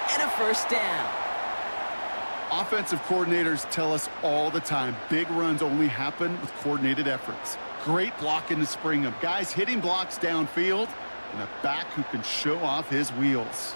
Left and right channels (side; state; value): both; inverted; correlation -1.00